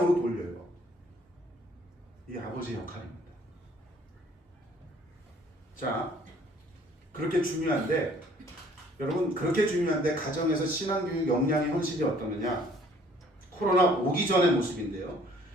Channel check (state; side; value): normal; both; correlation 0.58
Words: 돌려요. 이게 아버지의 역할입니다. 자, 그렇게 중요한데 여러분 그렇게 중요한데 가정에서 신앙교육 역량의 헌신이 어떠느냐? 코로나 오기 전의 모습인데요.